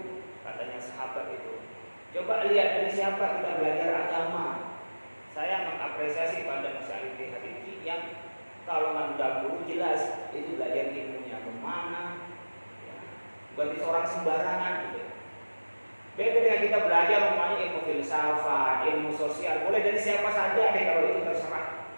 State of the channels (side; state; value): both; inverted; correlation -1.00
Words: katanya sahabat itu. Coba lihat dari siapa kita belajar agama. Saya mengapresiasi pada Masjid Al-Ittihad ini yang kalau nggak guru jelas itu belajar ilmunya kemana, ya. Berarti seorang sembarangan gitu. Beda dengan kita belajar namanya ilmu filsafat, ilmu sosial, boleh dari siapa saja deh kalau itu terserah.